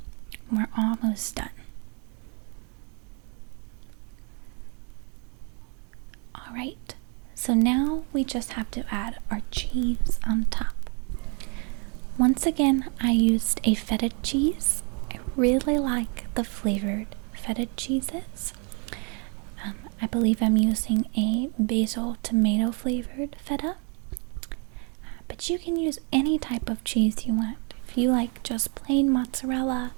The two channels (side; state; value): left; quieter; 36.2 dB